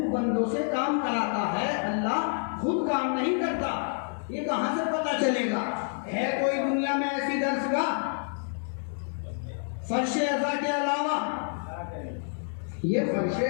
بندوں سے کام کراتا ہے، اللہ خود کام نہیں کرتا۔ یہ کہاں سے پتہ چلے گا؟ ہے کوئی دنیا میں ایسی درسگاہ فرش ازا کے علاوہ؟ یہ فرش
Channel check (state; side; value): silent; right; 59 dB below the other